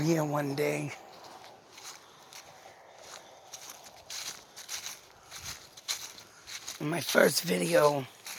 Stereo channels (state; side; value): identical; both; correlation 1.00